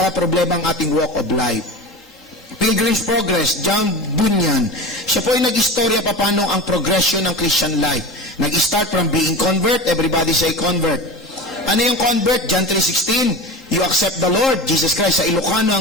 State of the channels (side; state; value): both; normal; correlation 0.31